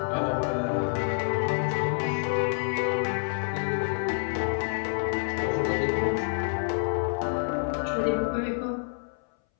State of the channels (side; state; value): right; silent; 59 dB below the other